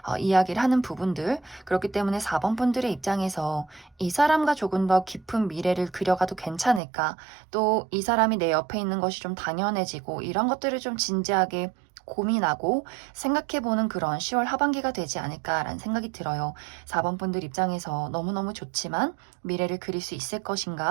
이야기를 하는 부분들, 그렇기 때문에 4번 분들의 입장에서 이 사람과 조금 더 깊은 미래를 그려가도 괜찮을까, 또 이 사람이 내 옆에 있는 것이 좀 당연해지고 이런 것들을 좀 진지하게 고민하고 생각해보는 그런 10월 하반기가 되지 않을까라는 생각이 들어요. 4번 분들 입장에서 너무너무 좋지만 미래를 그릴 수 있을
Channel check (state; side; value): drops out; left; at 6.8 s